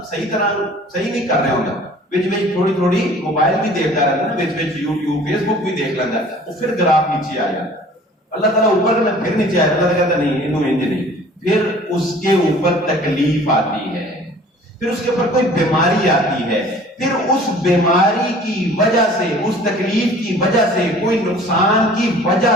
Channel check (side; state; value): both; normal; correlation 0.49